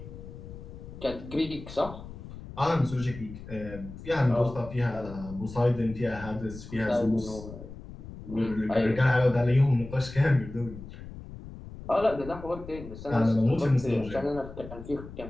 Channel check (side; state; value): left; noise; rumble, 13 dB below the sound